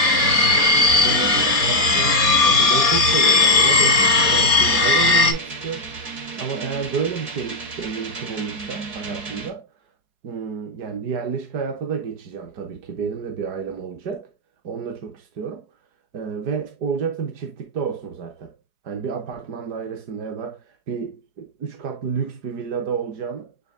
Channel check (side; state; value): left; late; 4.8 ms